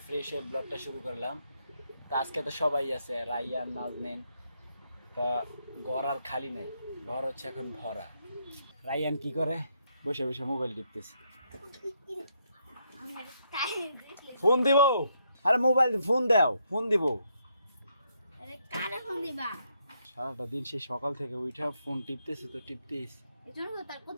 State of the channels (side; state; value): both; inverted; correlation -0.76